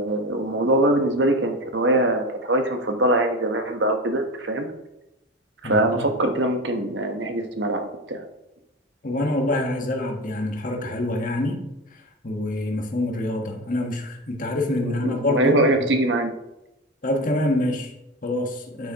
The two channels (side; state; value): both; normal; correlation 0.24